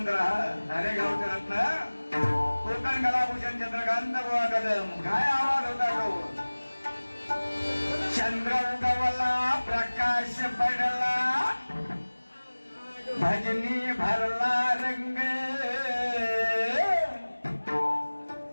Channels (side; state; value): both; inverted; correlation -1.00